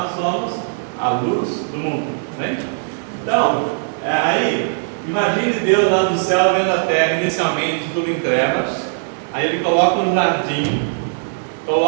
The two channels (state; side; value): silent; left; digital silence